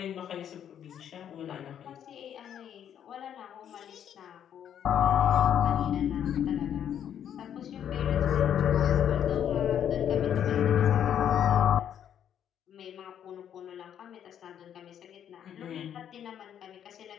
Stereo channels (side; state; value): right; quieter; 9.5 dB